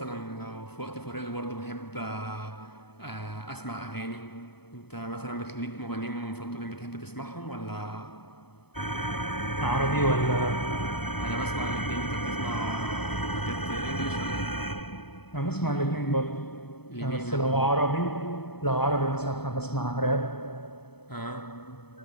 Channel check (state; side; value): late; right; 0.97 ms